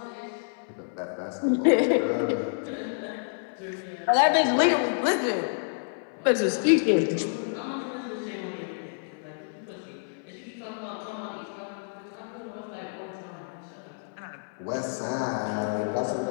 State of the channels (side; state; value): right; silent; 59 dB below the other